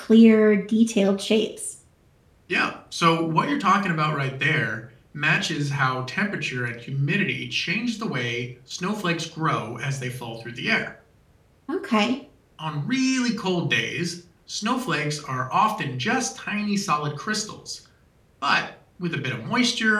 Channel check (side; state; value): both; identical; correlation 1.00